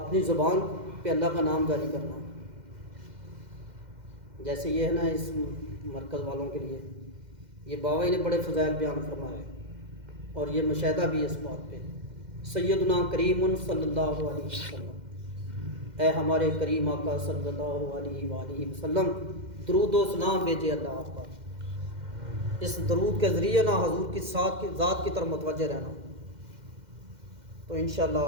زبان پہ اللہ کا نام جاری کرنا، جیسے یہ ہے نا اس مرکز والوں کے لیے، یہ بابا جی نے بڑے فضائل بیان فرمائے اور یہ مشاہدہ بھی اس بات پہ. سیدنا کریم صلی اللہ علیہ وسلم، اے ہمارے کریم آقا صلی اللہ علیہ وآلہ وسلم، درود و سلام بھیجے اللہ آپ پر. اس درود کے ذریعے نہ حضور کی ذات کی طرف متوجہ رہنا، تو انشاءاللہ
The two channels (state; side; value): late; left; 2.1 ms